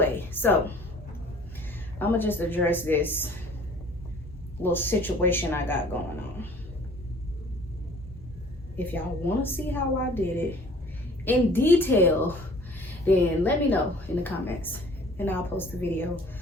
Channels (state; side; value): normal; both; correlation 0.51